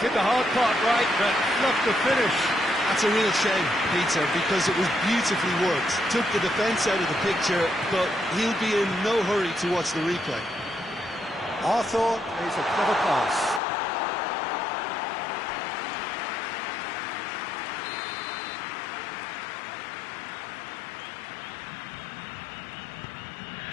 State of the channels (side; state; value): right; drops out; at 13.6 s